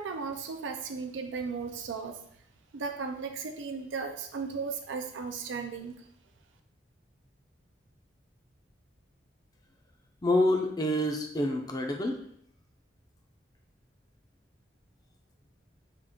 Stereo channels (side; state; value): both; normal; correlation 0.58